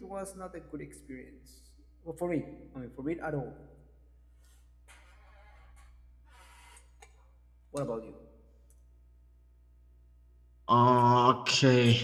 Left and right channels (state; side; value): identical; both; correlation 1.00